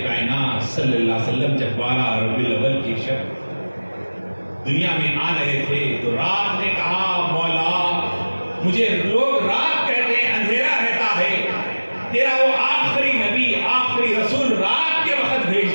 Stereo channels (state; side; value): inverted; both; correlation -1.00